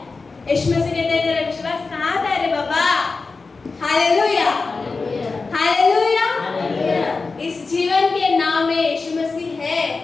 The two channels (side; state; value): right; quieter; 4.1 dB